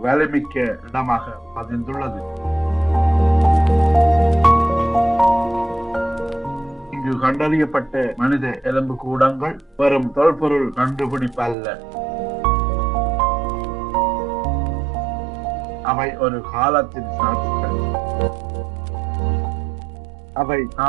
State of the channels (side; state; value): left; drops out; at 11.6 s